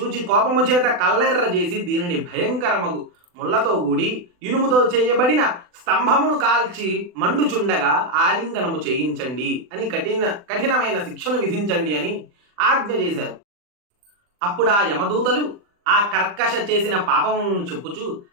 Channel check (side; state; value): left; late; 40 ms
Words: కోపము చేత కల్లెర్ర చేసి దీనిని భయంకరమగు ముళ్లతో కూడి ఇనుముతో చేయబడిన స్తంభమును కాల్చి మండుచుండగా ఆలింగనము చేయించండి అని కఠినమైన శిక్షను విధించండి అని ఆజ్ఞ చేశారు. అప్పుడు ఆ యమదూతలు ఆ కర్కశ చేసిన పాపమును చెప్పుచు